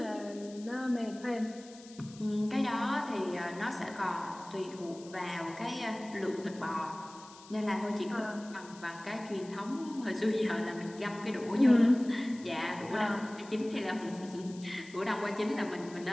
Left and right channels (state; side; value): noise; left; hiss, 20 dB below the sound